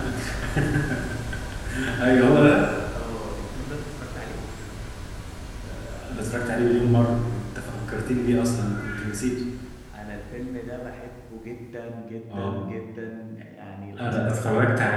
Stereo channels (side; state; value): both; identical; correlation 1.00